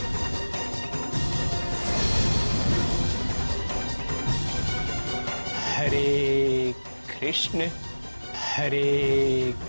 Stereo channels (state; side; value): inverted; both; correlation -1.00